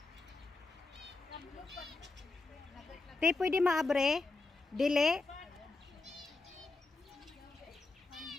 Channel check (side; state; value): right; quieter; 3.5 dB